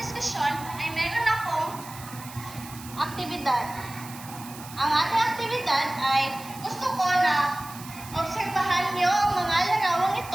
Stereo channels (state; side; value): noise; right; hiss, 16 dB below the sound